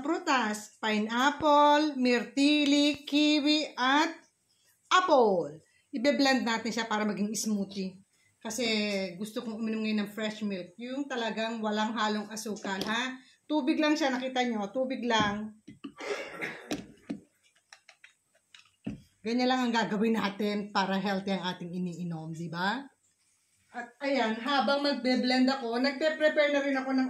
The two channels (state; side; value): identical; both; correlation 1.00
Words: Pineapple, myrtili, kiwi, at apple. Ibe-blend natin siya para maging smoothie. Kasi gusto kong uminom ngayon ng fresh milk. Yung talagang walang halong asukal, ha? Tubig lang siya, nakita nyo? Tubig lang. Ganyan lang ang gagawin natin para healthy ang ating iniinom, di ba? At ayan, habang magbe-blend ako, nagpe-prepare na rin ako ng